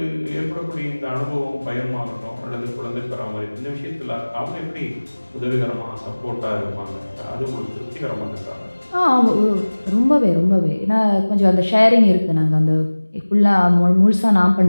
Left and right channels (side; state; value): both; inverted; correlation -1.00